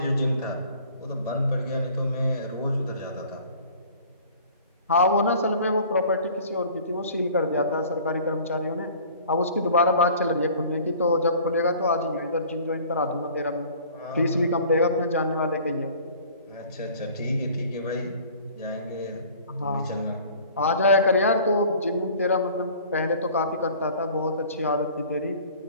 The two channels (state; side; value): inverted; both; correlation -0.48